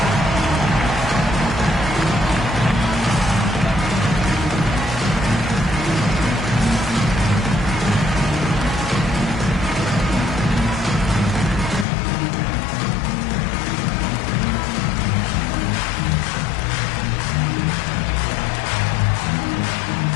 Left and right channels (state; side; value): drops out; right; at 11.9 s